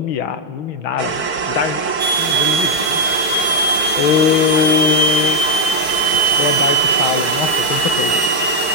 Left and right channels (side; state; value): right; late; 4.8 ms